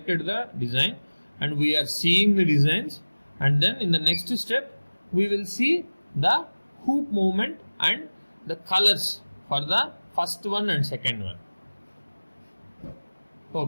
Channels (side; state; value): both; inverted; correlation -1.00